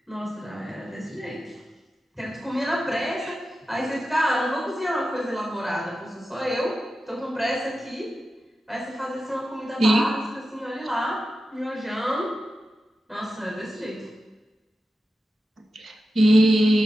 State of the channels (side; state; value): both; normal; correlation 0.92